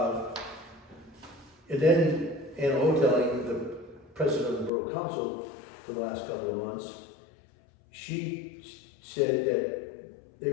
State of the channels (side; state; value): right; drops out; at 4.7 s